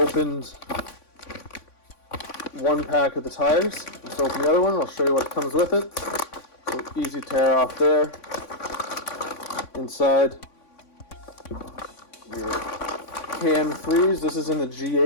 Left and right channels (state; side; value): late; right; 3.5 ms